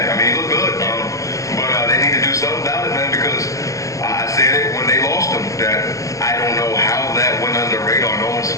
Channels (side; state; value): right; late; 0.16 ms